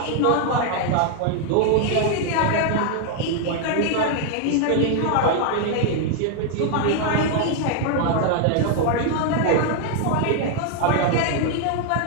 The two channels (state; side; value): different; both; correlation 0.00